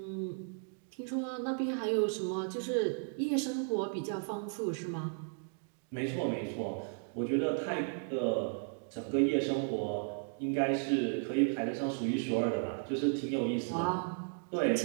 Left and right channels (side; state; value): left; silent; 55 dB below the other